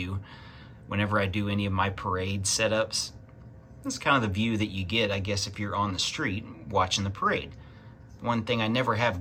whenever I do any of my parade setups. It's kind of the view that you get, I guess, if you're on the street watching the parade. One thing I never have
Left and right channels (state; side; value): identical; both; correlation 1.00